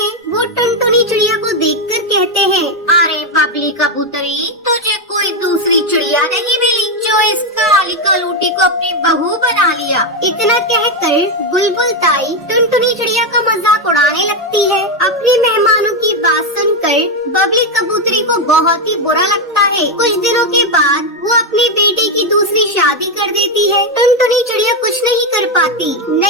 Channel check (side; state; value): both; normal; correlation 0.06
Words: वो टुनटुनी चिड़िया को देखकर कहते हैं, अरे बबली कबूतरी, तुझे कोई दूसरी चिड़िया नहीं मिली जो इस काली कलूटी को अपनी बहू बना लिया। इतना कहकर बुलबुल ताई टुनटुनी चिड़िया का मजाक उड़ाने लगती है। अपने मेहमानों की बात सुनकर बबली कबूतरी को बहुत ही बुरा लगता है। कुछ दिनों के बाद वो अपने बेटे की दूसरी शादी कर देती है। टुनटुनी चिड़िया कुछ नहीं कर पाती।